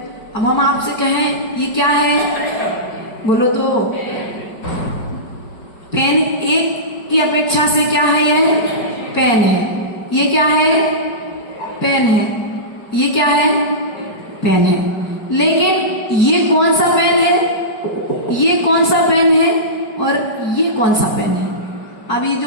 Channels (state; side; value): late; right; 4.6 ms